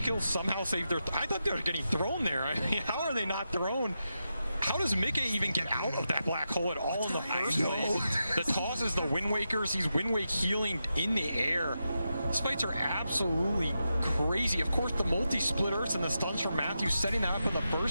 somehow save their... I thought they were getting thrown there. I mean, how are they not thrown? How does Mickey even get out of that black hole at all in the first place? The toss is the Wind Wakers. He's Wind Wake healing in the air. These fights are absolutely crazy. Of course, the multi-split Earths and the stuns from Matthew setting that up in the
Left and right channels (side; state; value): both; inverted; correlation -0.88